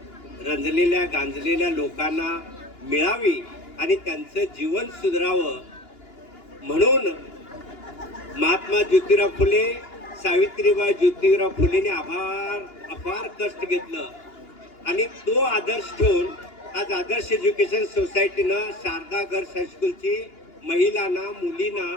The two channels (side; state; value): right; late; 2.9 ms